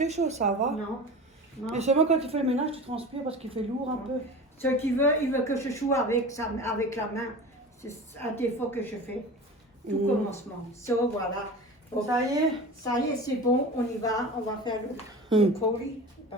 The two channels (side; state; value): both; normal; correlation 0.34